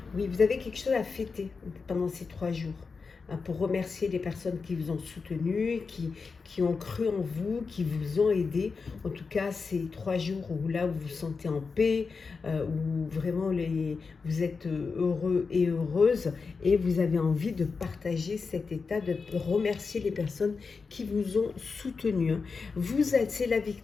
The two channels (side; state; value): right; quieter; 4.8 dB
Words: oui, vous avez quelque chose à fêter pendant ces 3 jours. Pour remercier les personnes qui vous ont soutenu, qui ont cru en vous, qui vous ont aidé. En tout cas, ces 3 jours où là, vous vous sentez en paix, où vraiment vous êtes heureux et heureuse et vous avez envie de partager cet état, de remercier les personnes qui vous ont soutenu. C'est la